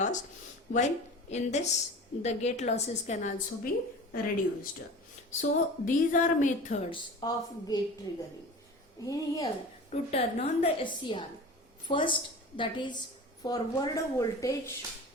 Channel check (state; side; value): normal; both; correlation 0.36